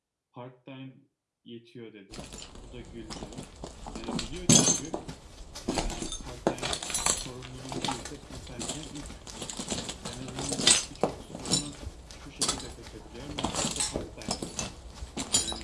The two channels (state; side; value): identical; both; correlation 1.00